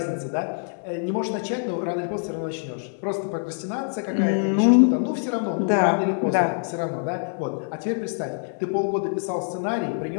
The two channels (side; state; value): right; silent; digital silence